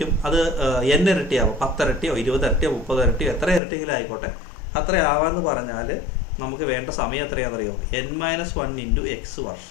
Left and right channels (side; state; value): right; drops out; at 3.6 s